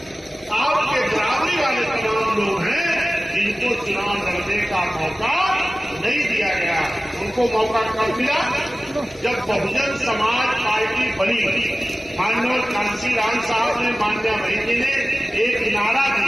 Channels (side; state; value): both; normal; correlation 0.96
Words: आपके बराबरी वाले तमाम लोग हैं जिनको चुनाव लड़ने का मौका नहीं दिया गया। उनको मौका कब मिला? जब बहुजन समाज पार्टी बनी। माननीय कांशीराम साहब ने, मान्या बहन जी ने एक नारा